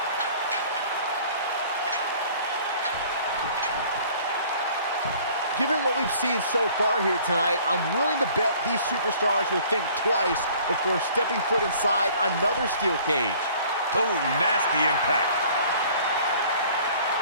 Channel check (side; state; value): both; inverted; correlation -0.52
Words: Given what we've seen so far here tonight, I'm willing to bet these superstars will think twice before stepping foot inside another steel cage. Oh, nasty impact.